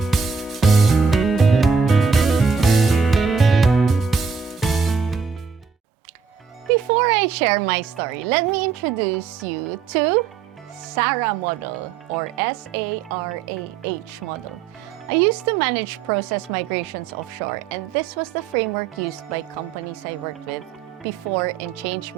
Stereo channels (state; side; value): quieter; left; 5.7 dB